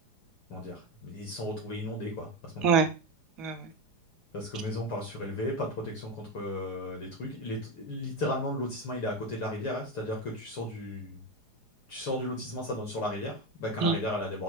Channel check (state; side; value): late; right; 4.8 ms